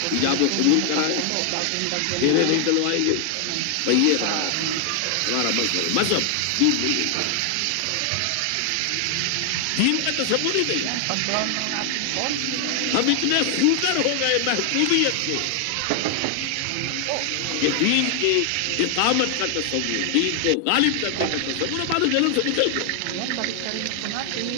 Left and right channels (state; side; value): different; both; correlation 0.00